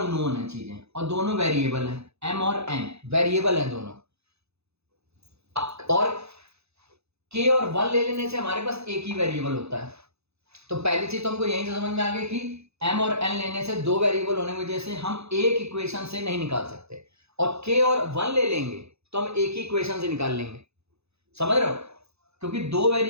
है चीजें और दोनों वेरिएबल हैं, m और n वेरिएबल हैं दोनों, और k और 1 ले लेने से हमारे पास एक ही वेरिएबल होता है। तो पहली चीज तो हमको यहीं से समझ में आ गई कि m और n लेने से दो वेरिएबल होने की वजह से हम एक इक्वेशन से नहीं निकाल सकते, और k और 1 ले लेंगे तो हम एक ही इक्वेशन से निकाल लेंगे। समझ रहे हो, क्योंकि दो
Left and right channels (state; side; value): late; left; 0.79 ms